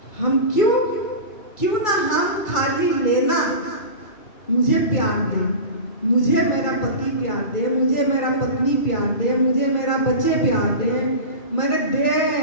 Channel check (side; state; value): right; late; 2.3 ms